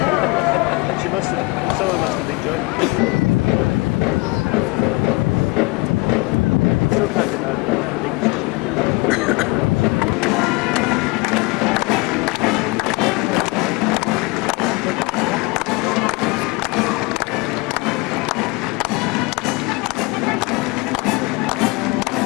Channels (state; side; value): quieter; right; 25.6 dB